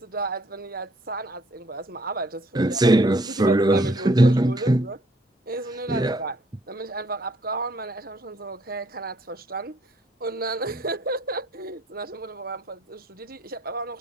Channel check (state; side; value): normal; both; correlation 0.65